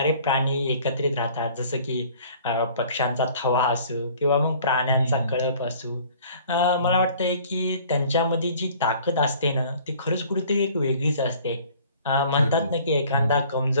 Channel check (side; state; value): both; inverted; correlation -0.52